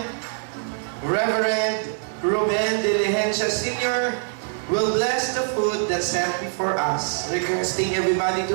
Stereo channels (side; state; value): left; silent; digital silence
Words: Reverend Ruben De Ligencia Sr. will bless the food that's set before us, requesting everybody